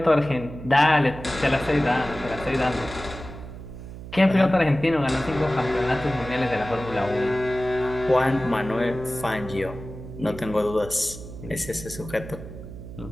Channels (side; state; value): right; noise; hum, 12 dB below the sound